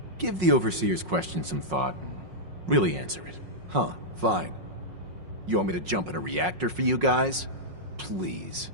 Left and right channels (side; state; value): left; late; 5.5 ms